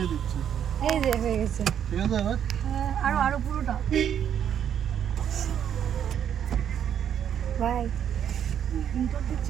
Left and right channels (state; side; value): quieter; left; 9.1 dB